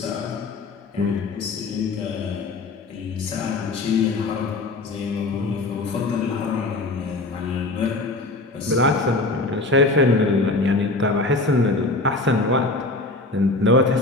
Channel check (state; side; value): quieter; right; 3.1 dB